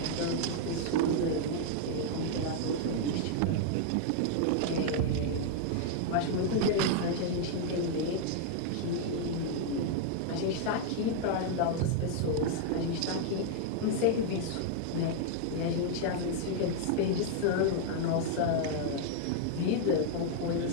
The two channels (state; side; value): different; both; correlation 0.00